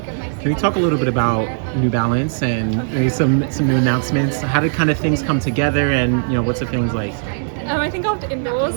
Can you talk a little bit about New Balance and maybe some new announcements? How did kind of things come together, and what's the feelings like? I think after indoors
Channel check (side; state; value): left; silent; digital silence